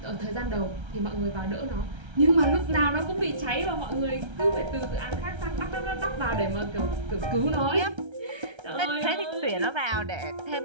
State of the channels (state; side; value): late; left; 1.3 ms